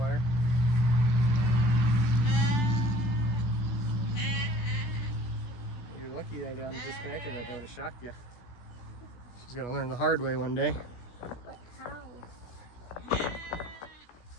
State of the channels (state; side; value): late; right; 17 ms